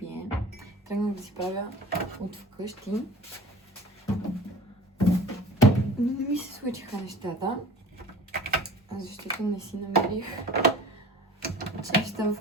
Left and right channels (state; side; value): normal; both; correlation 0.43